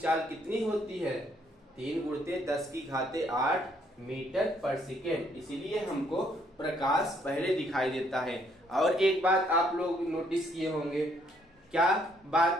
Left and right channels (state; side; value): normal; both; correlation 0.68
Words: कितनी होती है, 3 × 10⁸ मीटर पर सेकेंड, इसीलिए हमको प्रकाश पहले दिखाई देता है। और एक बात आप लोग नोटिस किए होंगे, क्या